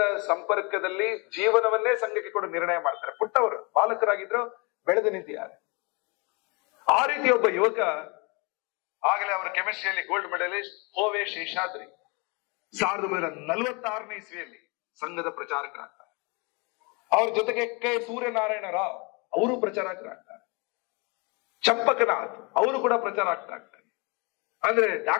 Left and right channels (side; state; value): right; quieter; 30.2 dB